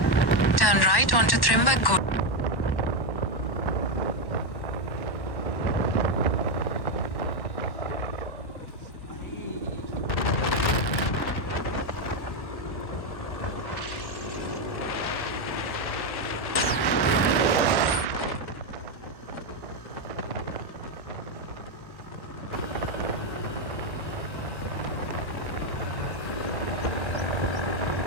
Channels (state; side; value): late; right; 1.1 ms